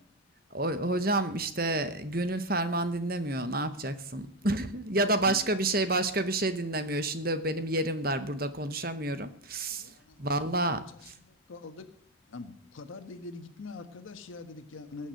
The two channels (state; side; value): normal; both; correlation 0.12